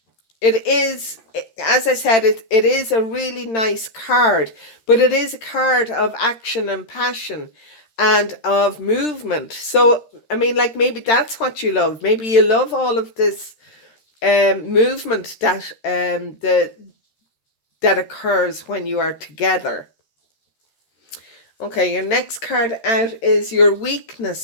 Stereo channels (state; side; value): late; right; 13 ms